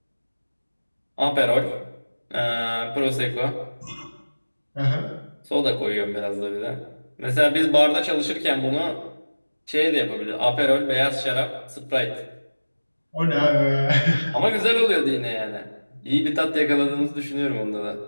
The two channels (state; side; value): inverted; both; correlation -1.00